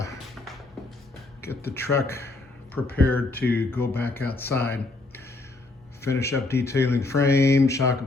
get the truck prepared to go back outside, finish up detailing frame, shock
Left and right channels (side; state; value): right; quieter; 3.2 dB